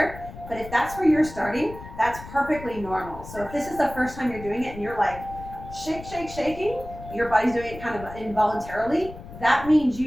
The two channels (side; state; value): left; noise; rumble, 14 dB below the sound